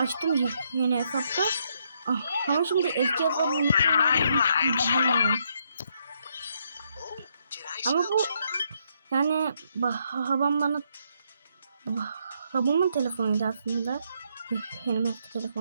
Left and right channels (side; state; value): both; inverted; correlation -0.74